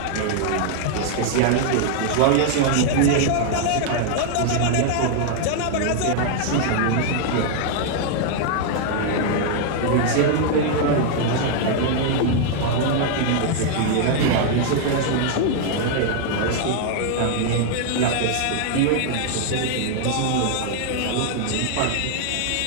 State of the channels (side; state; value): both; different; correlation 0.00